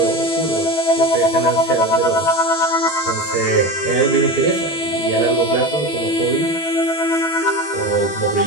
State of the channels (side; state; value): right; late; 12 ms